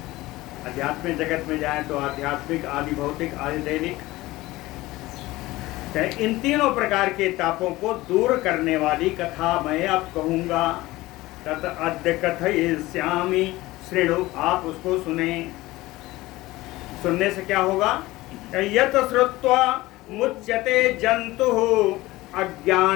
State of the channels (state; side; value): quieter; right; 18.8 dB